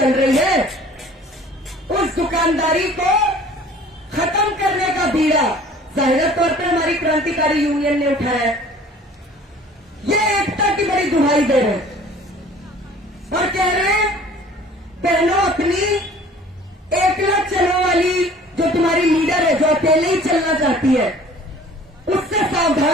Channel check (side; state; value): both; normal; correlation 0.49